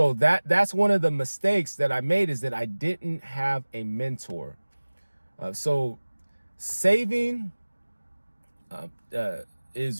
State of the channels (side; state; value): both; inverted; correlation -1.00